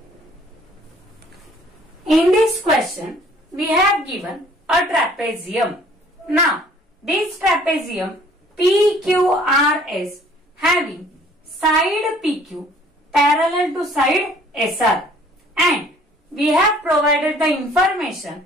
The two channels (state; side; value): normal; both; correlation 0.56